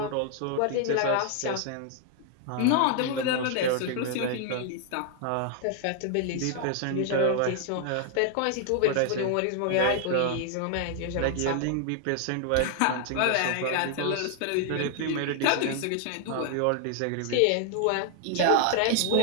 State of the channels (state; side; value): different; both; correlation 0.00